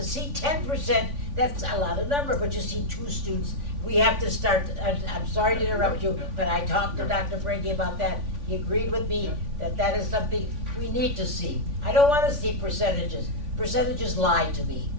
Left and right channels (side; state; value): left; late; 3.5 ms